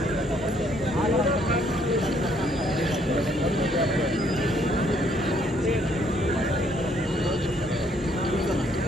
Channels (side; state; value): both; normal; correlation 0.67